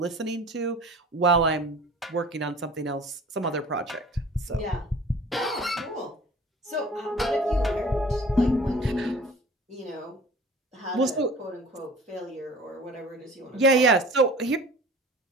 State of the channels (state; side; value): normal; both; correlation 0.45